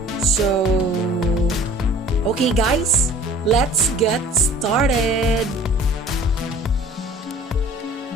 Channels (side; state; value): both; normal; correlation 0.48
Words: So, okay guys, let's get started.